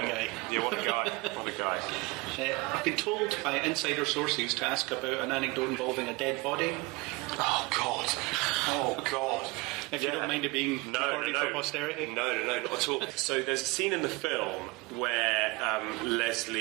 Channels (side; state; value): left; quieter; 25.4 dB